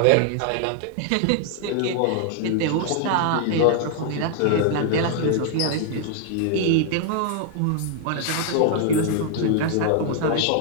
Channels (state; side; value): different; both; correlation 0.00